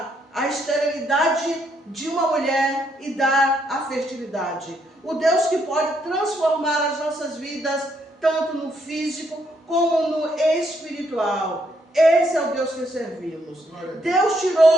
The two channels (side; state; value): both; normal; correlation 0.74